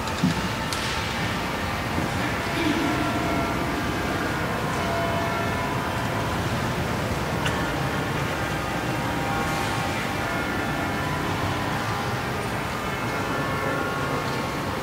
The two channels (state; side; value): identical; both; correlation 1.00